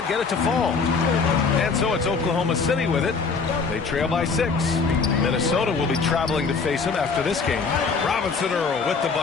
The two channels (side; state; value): right; quieter; 4.9 dB